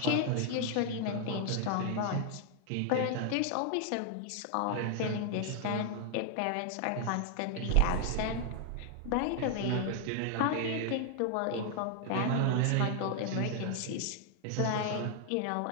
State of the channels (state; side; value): different; both; correlation 0.00